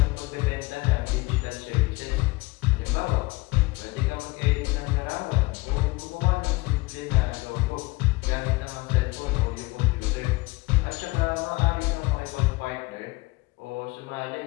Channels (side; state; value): right; quieter; 22.6 dB